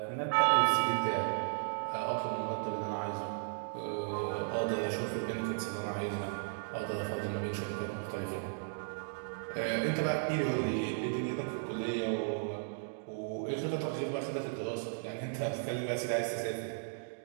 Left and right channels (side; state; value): left; silent; digital silence